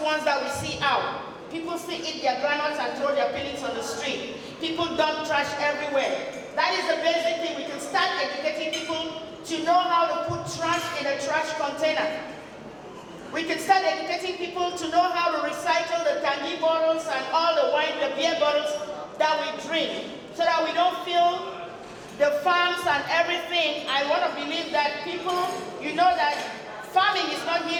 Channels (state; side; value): identical; both; correlation 1.00